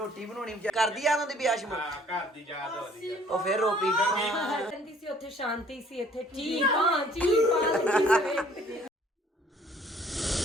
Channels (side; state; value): both; normal; correlation 0.57